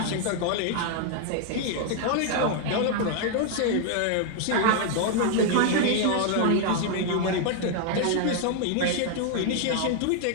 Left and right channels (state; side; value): different; both; correlation 0.00